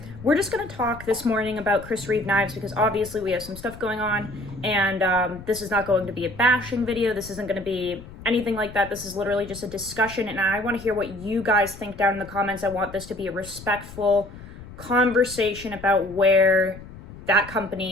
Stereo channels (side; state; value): left; noise; rumble, 15 dB below the sound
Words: we're just going to talk this morning about Reeve Knives because obviously we have some stuff going on, and this is not going to be a bashing video, this isn't going to be anything like that, this is literally just a discussion, and I want to hear what you guys think down in the comments. I want this to be a respectful conversation about where that